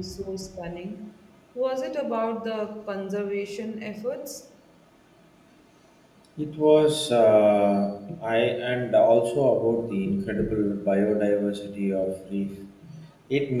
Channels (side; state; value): both; identical; correlation 1.00